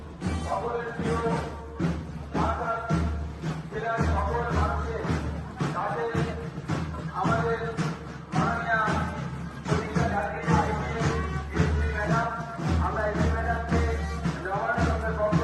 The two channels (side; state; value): both; identical; correlation 1.00